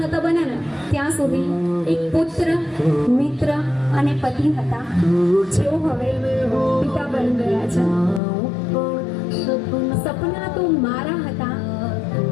નહોતા બન્યા ને ત્યાં સુધી એક પુત્ર, મિત્ર અને પતિ હતા, જેઓ હવે પિતા બની ગયા છે. સપના તો મારા હતા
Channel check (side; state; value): right; drops out; at 8.2 s